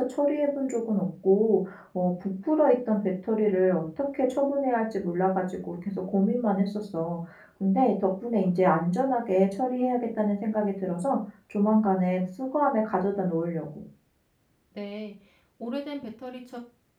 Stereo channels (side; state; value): both; identical; correlation 1.00